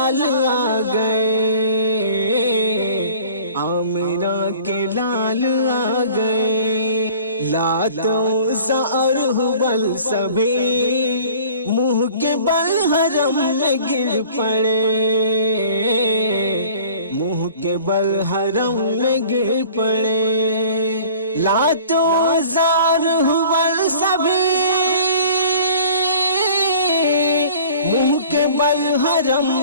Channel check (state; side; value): inverted; both; correlation -0.47